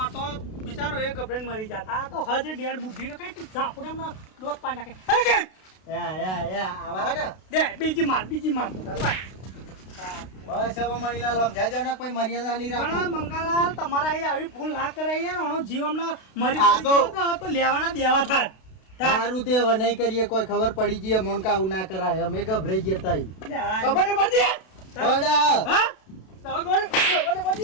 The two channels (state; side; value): late; right; 32 ms